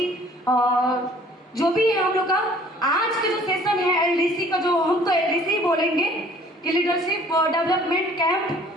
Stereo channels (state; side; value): normal; both; correlation 0.54